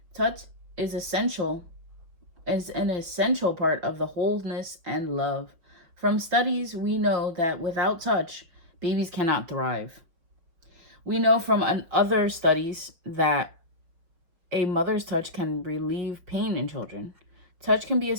Touch is an essential part of the wholeness and love. From studies, we know that without touch, babies cannot thrive. We know from other studies that a mother's touch can relieve pain in children. Touch can be a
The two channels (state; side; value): late; left; 5.9 ms